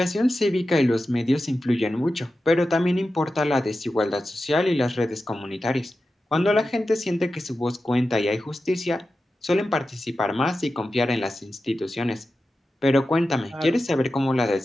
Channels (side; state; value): both; normal; correlation 0.92